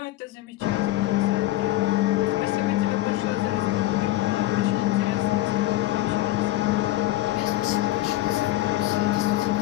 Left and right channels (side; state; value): right; quieter; 16.2 dB